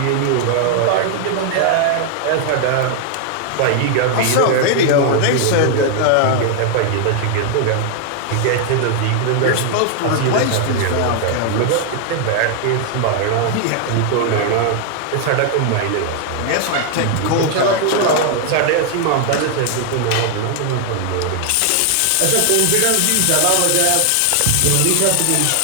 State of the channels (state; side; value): different; both; correlation 0.00